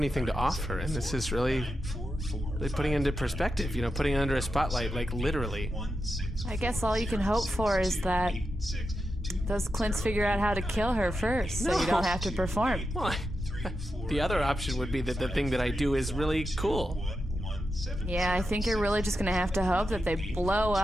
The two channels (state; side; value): normal; both; correlation 0.88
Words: to offer, and this is really putting it into perspective, putting it under a spotlight, like literally. I guess all you can hope for is that those C.L.I.N.Ts figure out how to kill her first, so you don't have to perform. Well, the other option would be that the thing that I do is really cool. Yeah, I think you're really just gonna have to hope that they blow